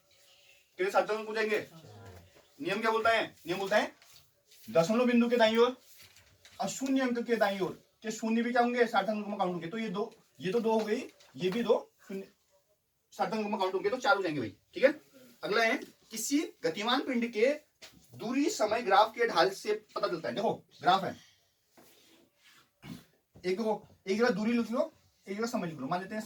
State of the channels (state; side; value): identical; both; correlation 1.00